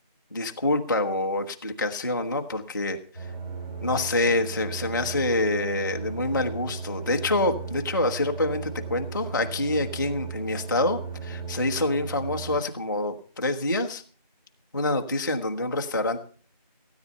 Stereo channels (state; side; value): inverted; both; correlation -0.43